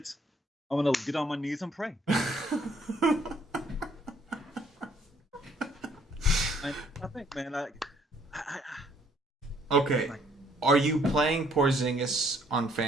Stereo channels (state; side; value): normal; both; correlation 0.64